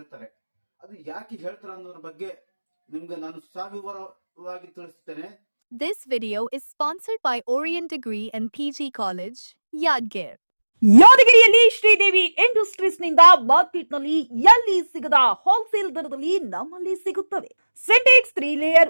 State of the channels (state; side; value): inverted; both; correlation -1.00